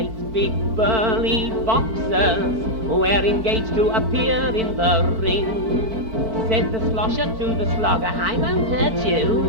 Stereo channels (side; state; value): left; late; 4.5 ms